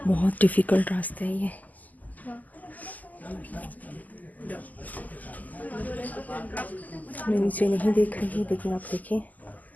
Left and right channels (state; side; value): late; right; 0.080 ms